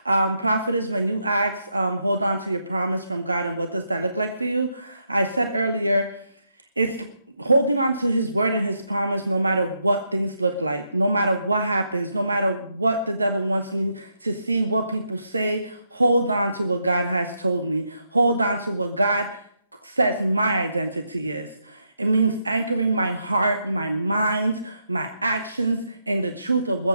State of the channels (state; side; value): inverted; both; correlation -0.80